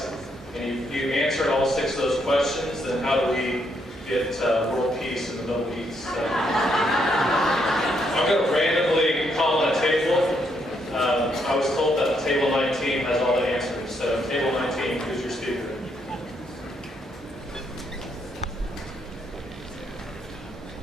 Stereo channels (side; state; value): both; normal; correlation 0.75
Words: And if you answered all 6 of those questions, then how do we get world peace in the Middle East? I'm going to randomly call on a table. I was told that table 19 has all the answers. So table 19, who's your speaker?